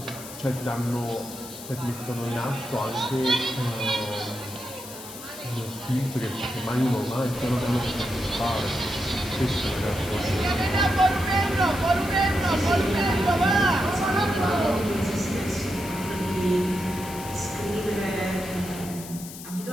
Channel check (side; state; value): left; noise; hiss, 13 dB below the sound